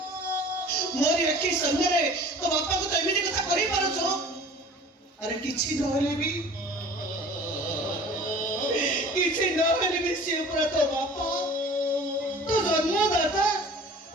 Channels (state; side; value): normal; both; correlation 0.44